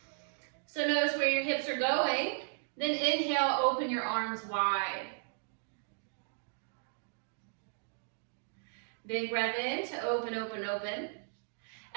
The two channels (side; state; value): left; silent; digital silence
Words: So notice where your hips are going. Then inhale, open your arms wide. Big breath in to open, open, open.